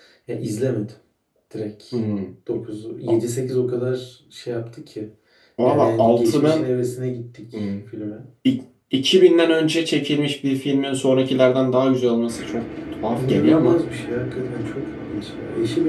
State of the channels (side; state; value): both; identical; correlation 1.00